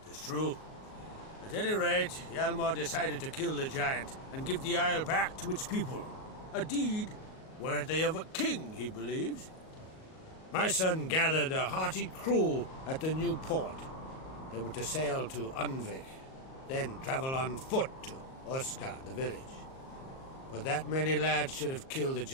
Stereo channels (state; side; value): late; right; 38 ms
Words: It's true. At any rate, Hjalmar decided to kill the giant and give the isle back to its people. A deed worthy of a king, he believes. My son gathered a hearty crew at the new port. They were to sail to Undvik, then travel on foot to Oskar, the village. But that many lads should have killed the